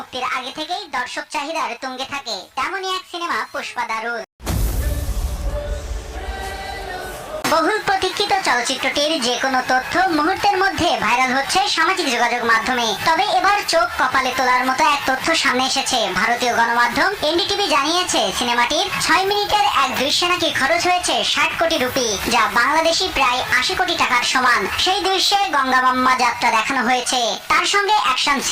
আগে থেকেই দর্শক চাহিদার তুঙ্গে থাকে। তেমনই এক সিনেমা পুষ্পা দ্য রুল। বহুল প্রতীক্ষিত চলচ্চিত্রটির যে কোনো তথ্য মুহূর্তের মধ্যে ভাইরাল হচ্ছে সামাজিক যোগাযোগ মাধ্যমে। তবে এবার চোখ কপালে তোলার মতো এক তথ্য সামনে এসেছে। ভারতীয় গণমাধ্যম এনডিটিভি জানিয়েছে, সিনেমাটির 6 মিনিটের এক দৃশ্যে নাকি খরচ হয়েছে 60 কোটি রুপি, যা বাংলাদেশি প্রায় 80 কোটি টাকার সমান। সেই দৃশ্যে গঙ্গামাম্মা যাত্রা দেখানো হয়েছে, তার সঙ্গে অ্যাকশন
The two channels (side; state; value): both; identical; correlation 1.00